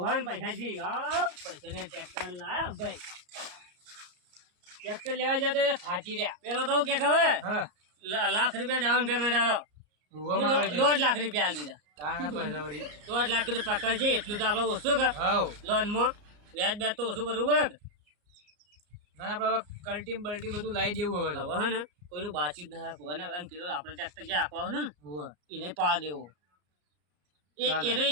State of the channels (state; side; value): late; left; 34 ms